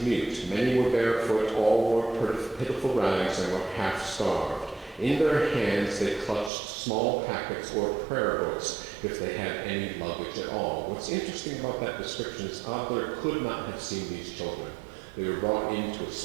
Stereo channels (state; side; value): drops out; left; at 6.5 s